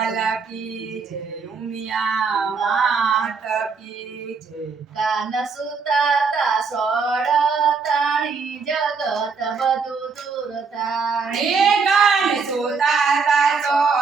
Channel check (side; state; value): left; quieter; 5.1 dB